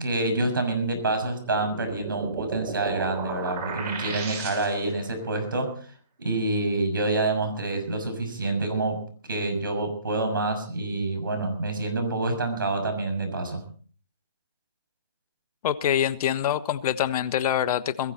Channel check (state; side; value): inverted; both; correlation -0.45